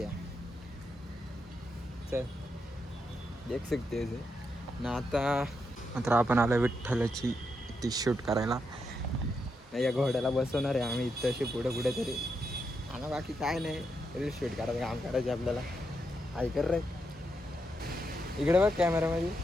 चल देख सकते ना. आता मात्र आपण आलो विठ्ठलाची ती शूट करायला. या घोड्याला बसवणार आहे आम्ही इथं अशी पुढे पुढे तरी. आणि बाकी काय नाही, रील शूट करायचं काम करायचे आपल्याला. ऐकर रे, इकडे बघ कॅमेरामध्ये.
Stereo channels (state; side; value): normal; both; correlation 0.82